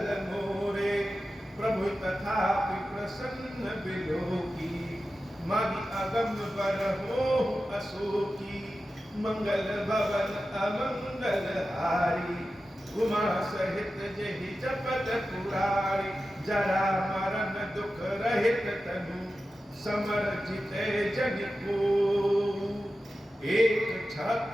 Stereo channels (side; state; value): both; normal; correlation 0.93